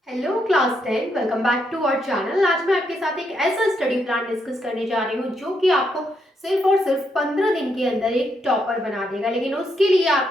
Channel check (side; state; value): both; normal; correlation 0.78